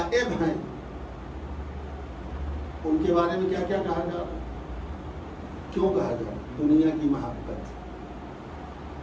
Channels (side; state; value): both; identical; correlation 1.00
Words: ہیں، ان کے بارے میں کیا کیا کہا جا رہا ہے؟ کیوں کہا جا رہا ہے؟ دنیا کی محبت،